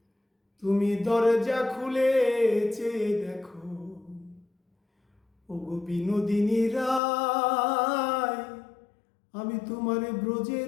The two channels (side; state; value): right; drops out; at 7.0 s